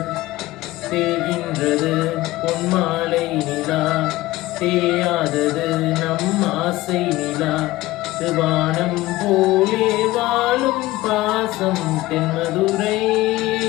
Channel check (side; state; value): right; quieter; 17.8 dB